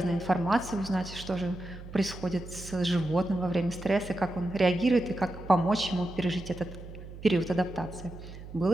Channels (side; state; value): right; noise; hum, 13 dB below the sound